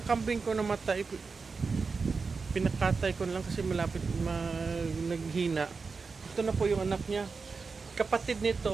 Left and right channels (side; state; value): left; quieter; 4.7 dB